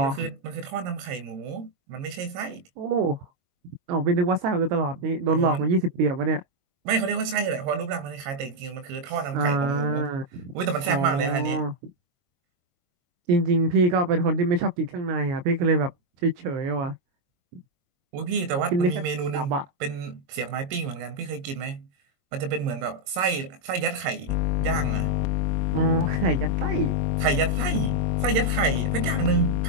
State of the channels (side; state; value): left; late; 22 ms